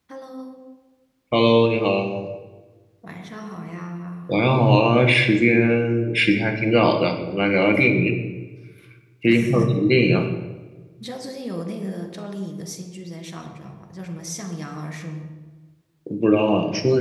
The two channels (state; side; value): identical; both; correlation 1.00